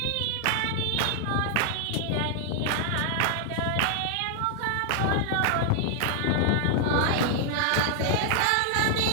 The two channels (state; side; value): different; both; correlation 0.00